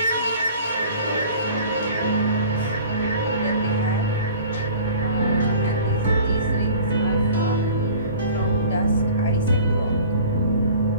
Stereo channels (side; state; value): both; inverted; correlation -0.45